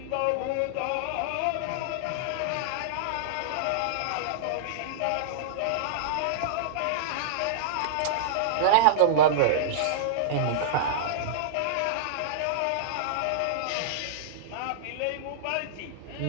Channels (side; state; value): both; different; correlation -0.02